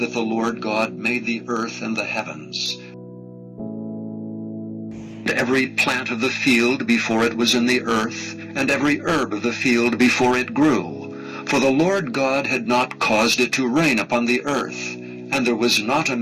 the Lord God made the earth and the heavens. Every plant of the field before it was in the earth, and every herb of the field before it grew. For the Lord God had not caused it to rain upon the earth, and there was not a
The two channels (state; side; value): identical; both; correlation 1.00